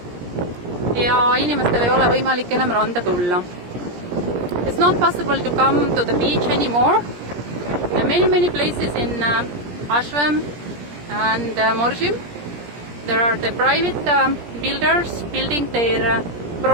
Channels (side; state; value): left; late; 17 ms